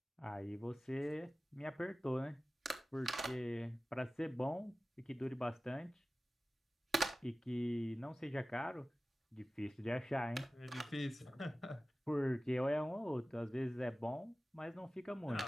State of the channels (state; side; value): normal; both; correlation 0.96